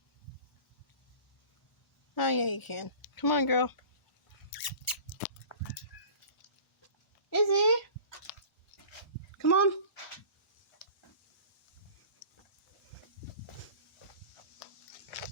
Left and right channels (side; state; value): right; late; 1.0 ms